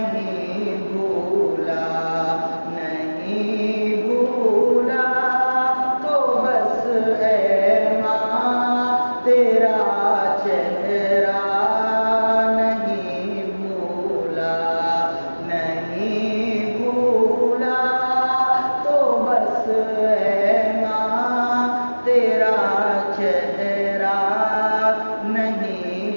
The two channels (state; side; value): inverted; both; correlation -1.00